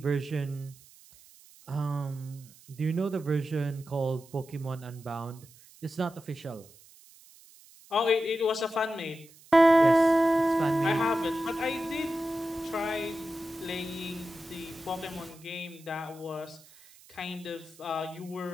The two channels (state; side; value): noise; right; hiss, 24 dB below the sound